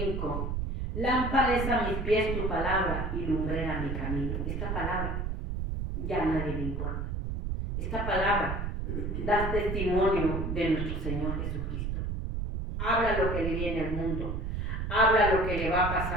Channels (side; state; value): right; noise; rumble, 2 dB below the sound